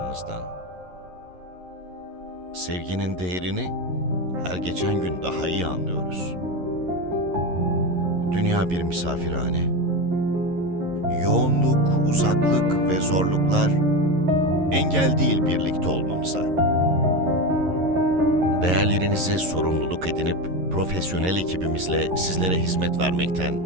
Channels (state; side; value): late; left; 11 ms